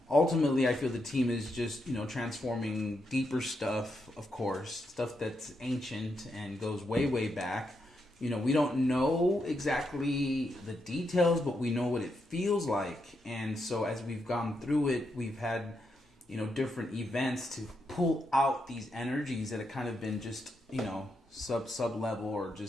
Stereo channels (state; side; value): normal; both; correlation 0.82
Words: Ultimately, I feel the team is just, transforming deeper stuff, of course, stuff that's ancient and goes way, way back. We don't know exactly the details, but we know what it feels like. And so as we've gone through it, we've had, different events to pull out these energies that have kind of been just, sub level or